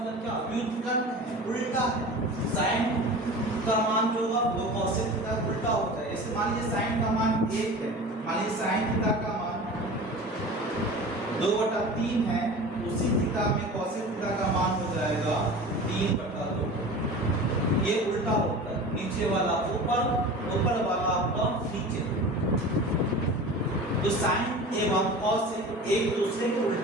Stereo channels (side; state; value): both; normal; correlation 0.36